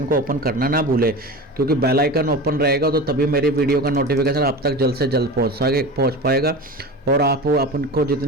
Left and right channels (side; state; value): both; normal; correlation 0.30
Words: को ओपन करना ना भूले, क्योंकि बेल आइकन ओपन रहेगा तो तभी मेरी वीडियो का नोटिफिकेशन आप तक जल्द से जल्द पहुँच पाएगा, और आप अपन को